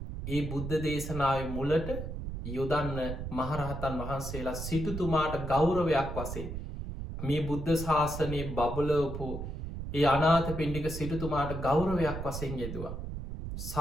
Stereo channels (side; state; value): right; noise; rumble, 6 dB below the sound